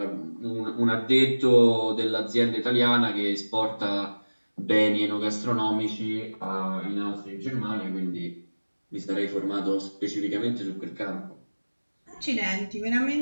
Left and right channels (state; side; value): inverted; both; correlation -1.00